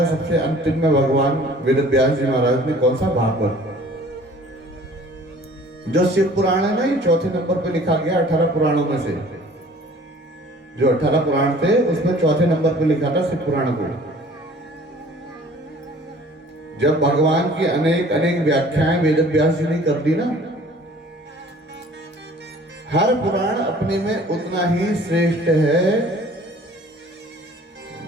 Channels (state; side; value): normal; both; correlation 0.50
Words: सबसे अंतिम में भगवान वेद व्यास जी महाराज ने। कौन सा? भागवत। जो शिव पुराण है ना, ये 4थे नंबर पे लिखा गया 18 पुराणों में से। जो 18 पुराण थे उसमें 4थे नंबर पे लिखा था शिव पुराण को। जब भगवान की अनेक अनेक व्याख्याएं वेद व्यास जी ने कर दी ना, हर पुराण अपने में उतना ही श्रेष्ठ है।